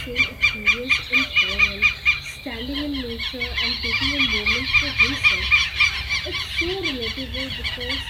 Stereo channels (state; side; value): identical; both; correlation 1.00